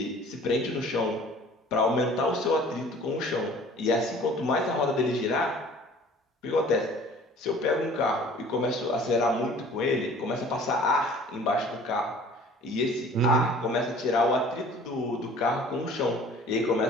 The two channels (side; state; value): both; normal; correlation 0.49